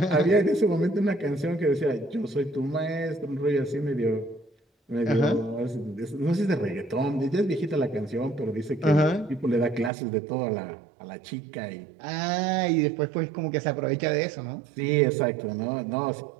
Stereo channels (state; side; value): drops out; left; at 9.9 s